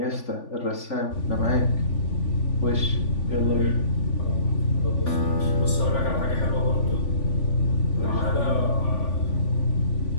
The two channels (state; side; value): late; right; 3.5 ms